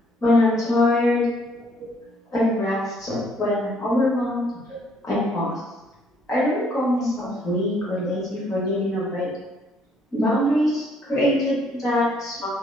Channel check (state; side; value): normal; both; correlation 0.66